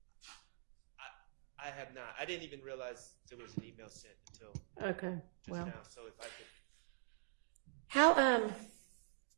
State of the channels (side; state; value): left; silent; digital silence